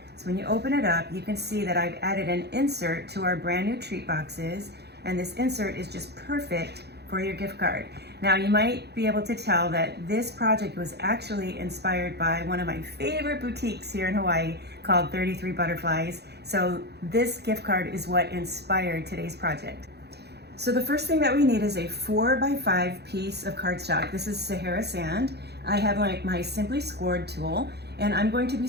So when you open it up, you can see that I've added an insert to our brand new treat boxes, and this insert is just perfect for your gift card. Now you might be able to tell that this project was actually inspired by one of my favorite boutiques here in Hawaii called 33 Butterflies. So this gift card is what inspired today's project. So the first thing that we need is a 4x5 piece of cardstock. This is Sahara sand. I have my Simply Scored tool, and I'm going to be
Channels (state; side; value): late; left; 0.48 ms